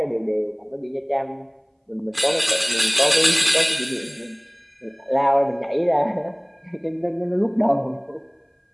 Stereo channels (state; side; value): identical; both; correlation 1.00